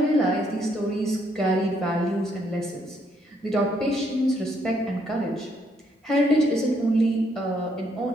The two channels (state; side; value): normal; both; correlation 0.72